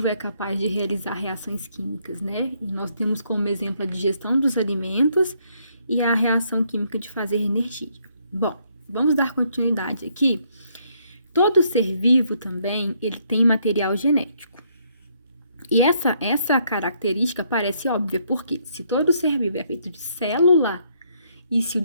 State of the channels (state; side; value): inverted; both; correlation -0.71